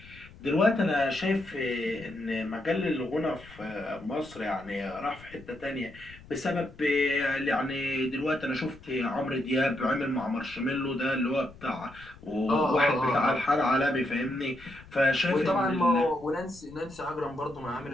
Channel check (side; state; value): left; noise; rumble, 21 dB below the sound